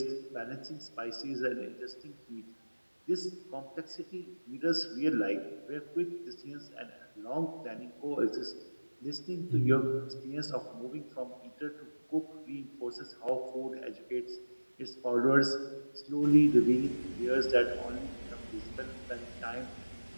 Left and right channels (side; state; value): both; inverted; correlation -1.00